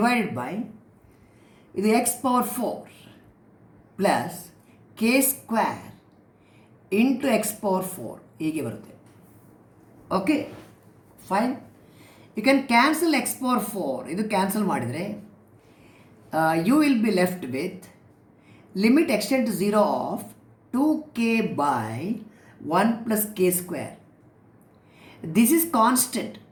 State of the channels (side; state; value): both; identical; correlation 1.00